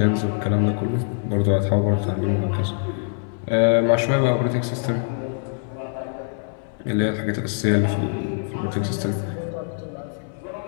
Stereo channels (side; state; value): right; silent; 60 dB below the other